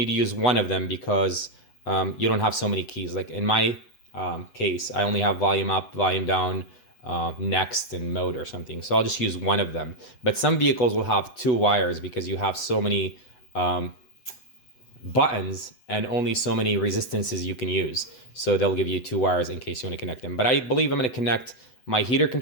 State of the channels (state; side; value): late; right; 8.1 ms